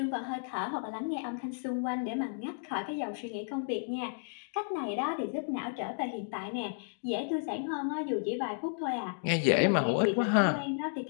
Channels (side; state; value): right; silent; digital silence